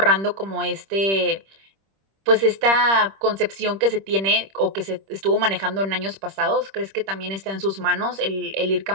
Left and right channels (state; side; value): late; left; 26 ms